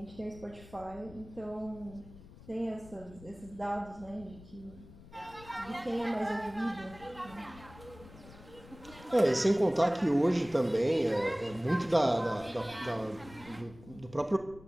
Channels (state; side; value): noise; left; rumble, 19 dB below the sound